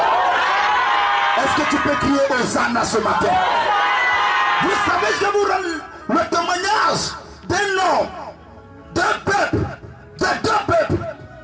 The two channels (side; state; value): both; identical; correlation 1.00